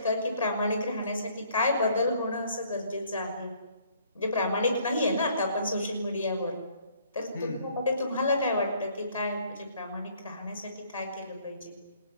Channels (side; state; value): both; inverted; correlation -0.62